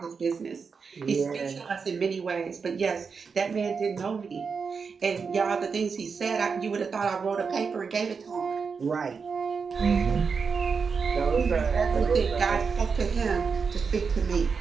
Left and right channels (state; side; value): quieter; left; 5.5 dB